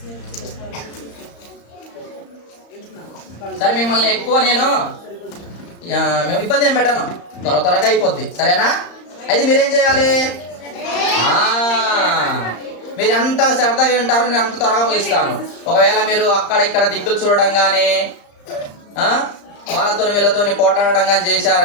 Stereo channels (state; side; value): late; right; 35 ms